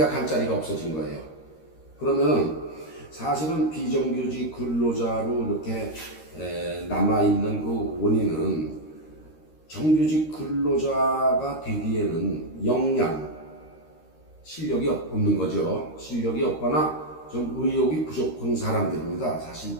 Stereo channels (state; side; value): late; right; 13 ms